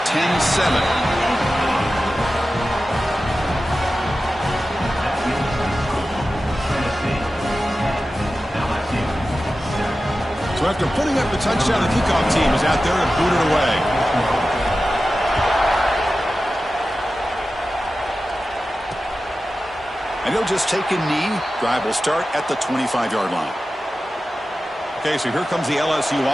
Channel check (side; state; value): both; normal; correlation 0.94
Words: So after putting up the touchdown, the kickoff team is out there to boot it away. And he'll just take a knee. Drive will start at the 25-yard line. Okay, so here comes the LSU